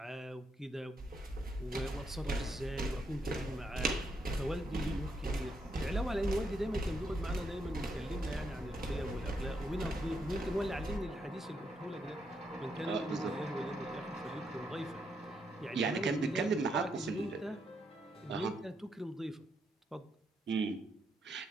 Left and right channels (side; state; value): both; normal; correlation 0.78